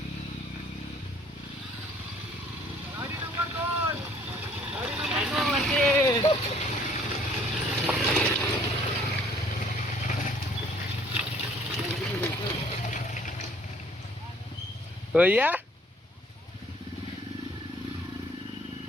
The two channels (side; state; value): both; normal; correlation 0.58